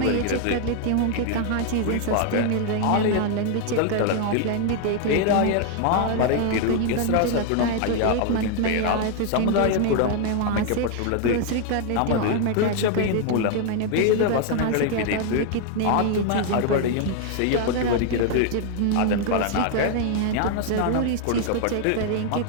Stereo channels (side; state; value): both; different; correlation 0.00